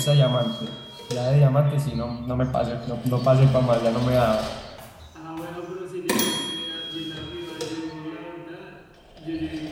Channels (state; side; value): identical; both; correlation 1.00